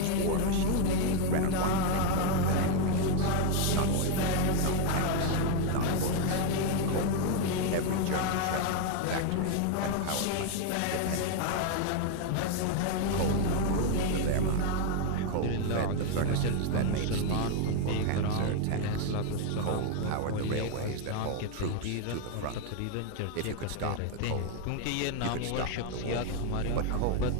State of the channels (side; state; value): both; different; correlation 0.01